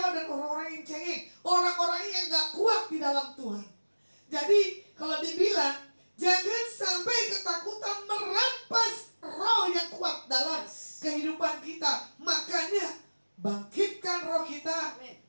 dan orang-orang yang cengeng, orang-orang yang gak kuat di dalam Tuhan. Jadi kalau dibilang, jangan sampai ketakutan merampas roh yang kuat dalam kehidupan kita. Makanya bangkitkan roh kita,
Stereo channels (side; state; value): both; inverted; correlation -1.00